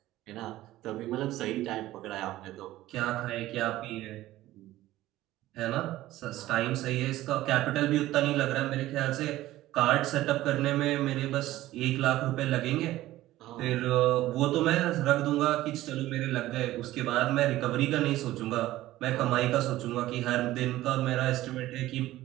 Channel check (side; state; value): left; quieter; 15.7 dB